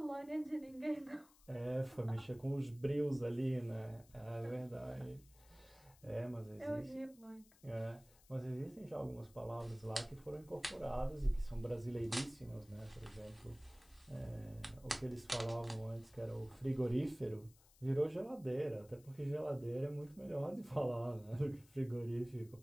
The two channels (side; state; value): left; noise; hiss, 26 dB below the sound